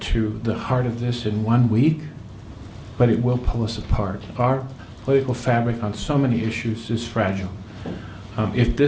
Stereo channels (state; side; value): identical; both; correlation 1.00